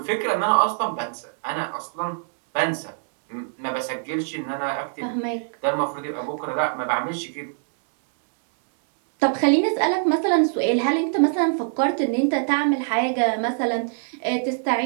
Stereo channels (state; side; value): silent; left; digital silence